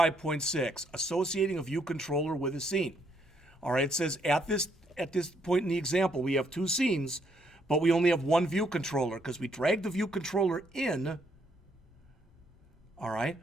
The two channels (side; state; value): both; normal; correlation 0.72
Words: associating a view controller with a scene. All right, it says at this point in the example, we have two scenes, but we only have one view controller because we dragged the view controller in, all right,